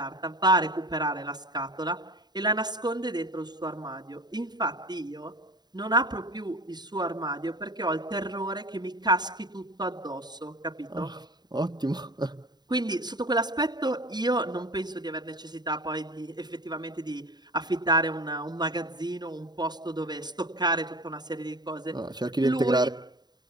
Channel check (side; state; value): left; late; 0.20 ms